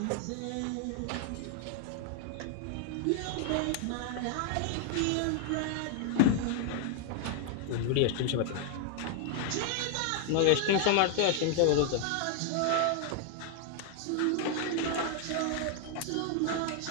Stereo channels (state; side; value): different; both; correlation 0.00